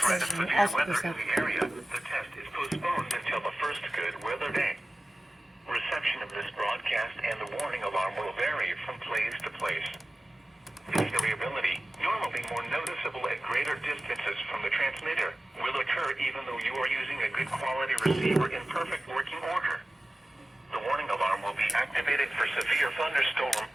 of severe weather in the area, the test is postponed until the first good weather day. Reception of this broadcast and the warning alarm will vary from place to place. This variability, normally more noticeable at greater distances from the transmitter, will occur even though you are using a good quality receiver in perfect working order. The warning alarm will be activated for severe thunderstorm,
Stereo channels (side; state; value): both; normal; correlation 0.95